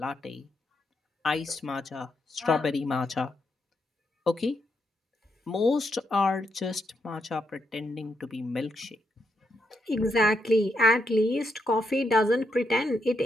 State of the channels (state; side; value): normal; both; correlation 0.81